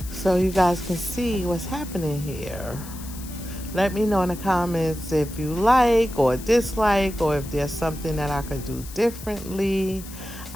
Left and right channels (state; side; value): noise; left; hiss, 15 dB below the sound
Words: so you guys can see what's happening here. Let me know in the comments if you like or dislike, or if there's something that I could do differently.